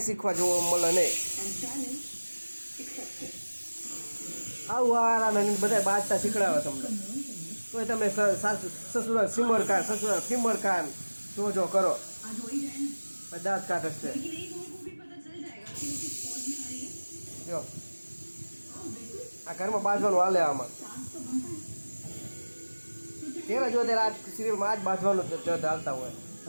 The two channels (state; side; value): inverted; both; correlation -1.00